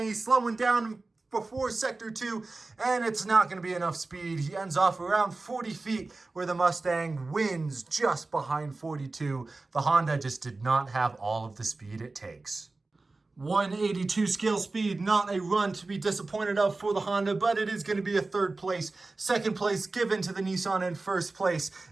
He's slowing down before sector 2, and it's not going to be enough speed. He ends off around 40 feet, where the Mustang wins just behind 42. The Honda just did not have all of the speed it takes. 182 scale speed, not a run to be disappointed of for the Honda, but it is going to be a 3rd place. 2nd place given to the Nissan, and 1st place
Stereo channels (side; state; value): left; quieter; 3.4 dB